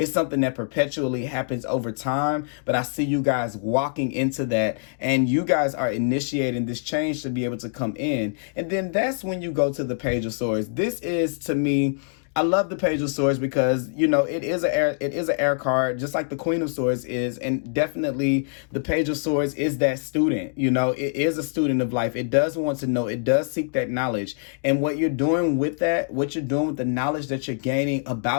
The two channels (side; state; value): right; silent; digital silence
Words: something that perpetually happens over time. But I see you guys walking into that, and you guys are initiating this change to be able to come in. And then that's when you go to the Page of Swords. This is, to me, I love the Page of Swords because, you know, it is an air card, just like the Queen of Swords is. And definitely the Page of Swords is that student. You know, it is a student of life. It does want to know. It does seek that knowledge. And what you're doing with that, what you're doing with the knowledge that you're gaining